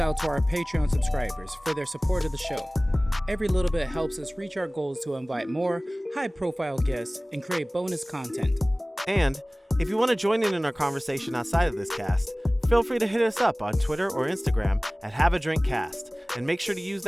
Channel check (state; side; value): normal; both; correlation 0.98